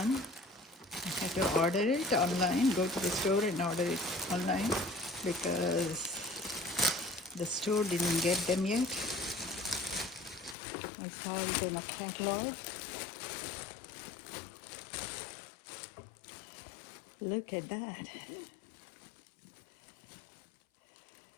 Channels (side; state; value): right; drops out; at 10.6 s